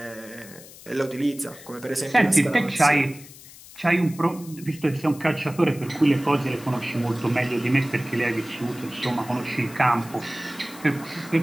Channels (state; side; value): noise; left; hiss, 19 dB below the sound